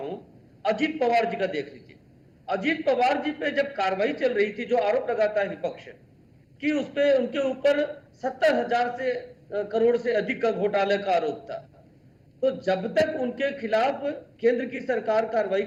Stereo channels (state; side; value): identical; both; correlation 1.00